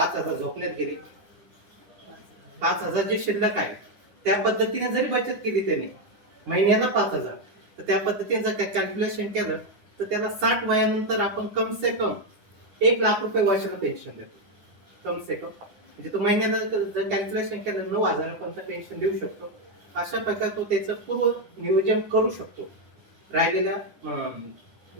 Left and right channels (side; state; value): left; late; 9.9 ms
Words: झोपण्यात गेले, 5,000 जे शिल्लक आहे त्या पद्धतीने जरी बचत केली त्याने महिन्याला 5,000, तर त्या पद्धतीने जर कॅल्क्युलेशन केलं तर त्याला 60 वयानंतर आपण कम से कम 1,00,000 रुपये वर्षाला पेन्शन देतो. कम से कम म्हणजे तो महिन्याला जर कॅल्क्युलेशन केलं 9,000 पर्यंत पेन्शन देऊ शकतो. अशा प्रकारे तो त्याचं पूर्व नियोजन करू शकतो राहिलेल्या